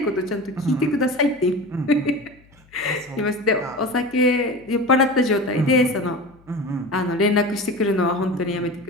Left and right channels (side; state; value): left; noise; hum, 29 dB below the sound